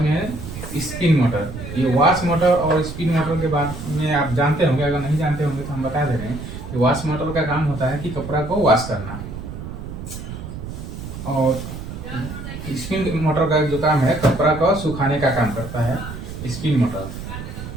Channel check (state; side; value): noise; right; rumble, 9 dB below the sound